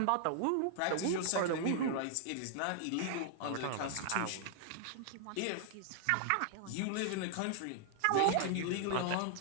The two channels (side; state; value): both; different; correlation 0.00